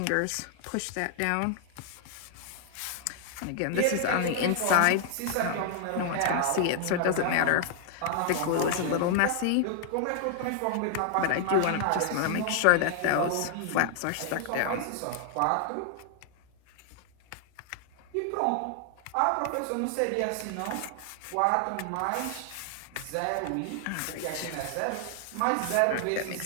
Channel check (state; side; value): different; both; correlation 0.00